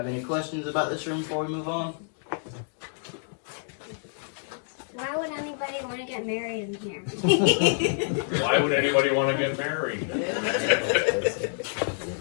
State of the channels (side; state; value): right; silent; digital silence